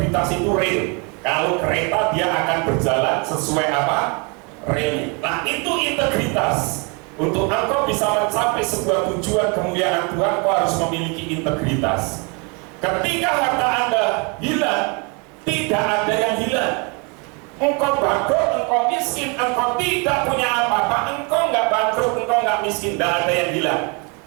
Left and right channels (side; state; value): left; quieter; 32.6 dB